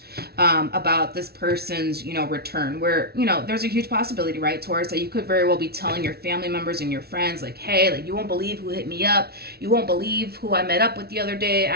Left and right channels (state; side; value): late; left; 0.45 ms